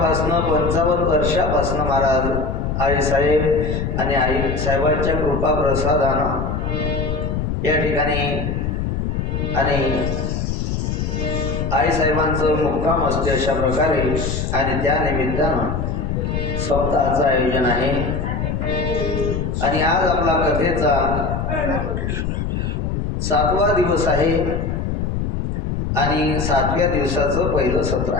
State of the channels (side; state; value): left; noise; rumble, 1 dB below the sound